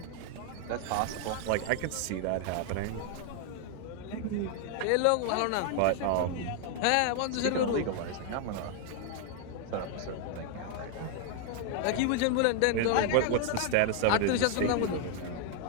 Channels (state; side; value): different; both; correlation 0.00